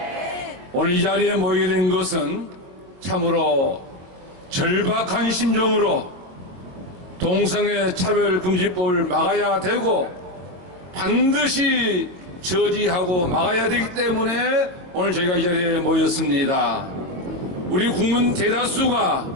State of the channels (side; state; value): left; late; 22 ms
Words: 오늘 이 자리에 모이게 된 것은 참으로 절박한 심정으로 동성애 차별금지법을 막아야 되고 반드시 저지하고 막아야 되기 때문에 오늘 저희가 이 자리에 모였습니다. 우리 국민